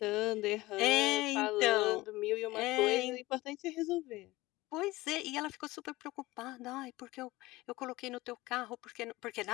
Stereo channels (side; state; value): right; quieter; 19.5 dB